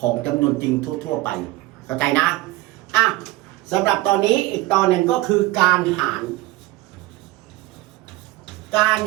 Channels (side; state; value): left; quieter; 18.8 dB